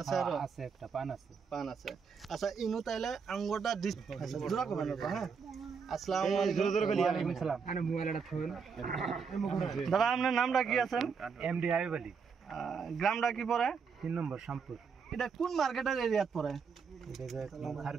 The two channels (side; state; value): left; quieter; 5.8 dB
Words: আছে আর আছে একটা পান আছে আচ্ছা ইনু তাইলে আঙ্গুরটা আচ্ছা জোড়া করবেন হ্যাঁ আসসালামু আলাইকুম ওয়ালাইকুম আসসালাম আরে মোবাইলটা থুন দাদা আপনার নামটা কি আছেন এমডি আইব আলী গ্রামটা কি পড়ে 3 নম্বর শামপুর এটা কোন মার্কেটের এরিয়াত পড়ে এটা